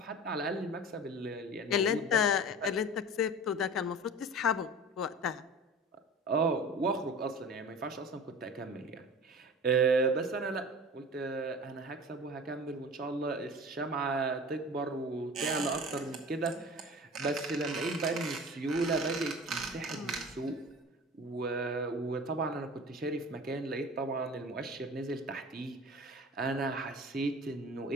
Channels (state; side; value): normal; both; correlation 0.37